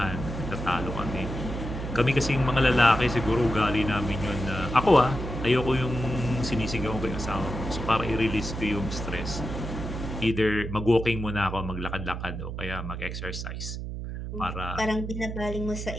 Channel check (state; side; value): noise; right; hum, 6 dB below the sound